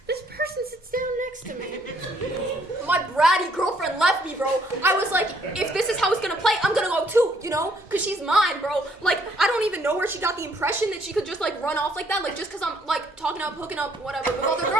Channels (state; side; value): normal; both; correlation 0.66